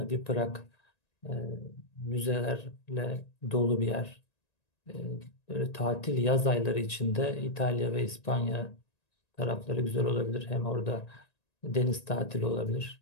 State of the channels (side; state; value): right; late; 1.9 ms